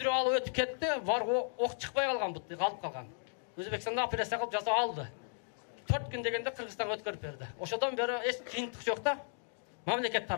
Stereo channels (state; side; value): silent; right; digital silence